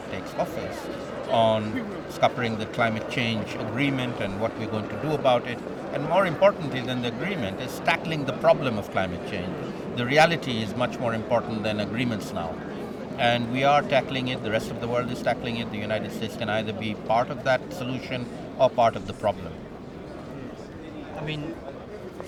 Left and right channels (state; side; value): identical; both; correlation 1.00